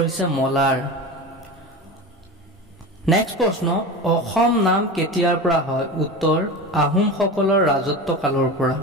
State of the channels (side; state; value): both; normal; correlation 0.28